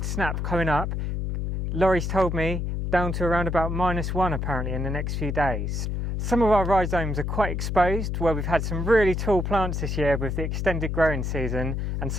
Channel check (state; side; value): noise; left; hum, 2 dB below the sound